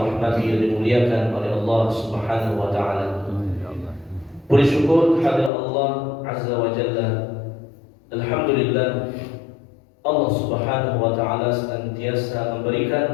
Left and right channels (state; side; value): drops out; right; at 5.5 s